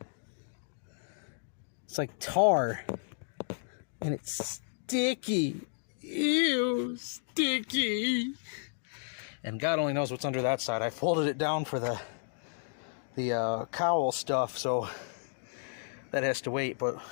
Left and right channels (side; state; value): right; silent; digital silence